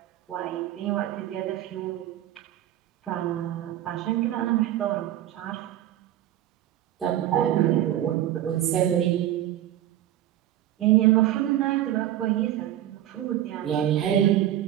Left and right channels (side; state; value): left; quieter; 12.6 dB